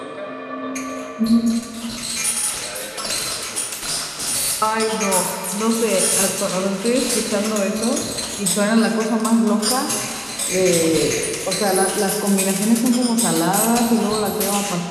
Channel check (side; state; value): both; identical; correlation 1.00